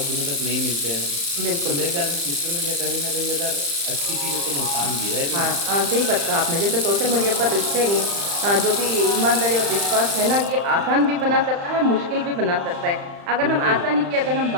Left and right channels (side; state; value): left; late; 35 ms